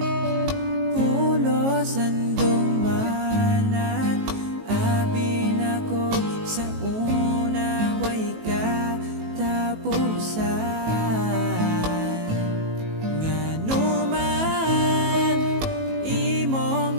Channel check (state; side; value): late; left; 18 ms